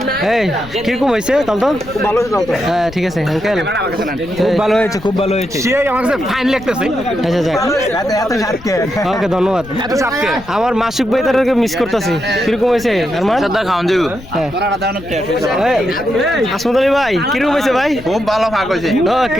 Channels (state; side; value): noise; left; rumble, 17 dB below the sound